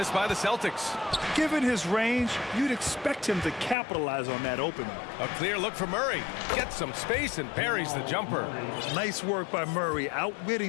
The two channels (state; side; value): drops out; right; at 3.8 s